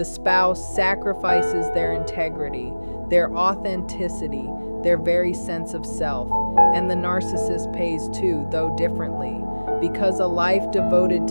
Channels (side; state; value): both; inverted; correlation -1.00